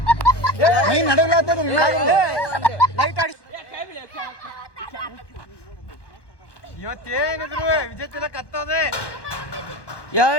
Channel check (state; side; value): late; right; 1.2 ms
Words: ಮೈ ನಡಗ್ಲಾತದ್ರಿ ಲೈಟ್ ಆಡಿ ಇವತ್ತೇನಿದ್ರು ವಿಜೇತ ಕತ್ತೋದೆ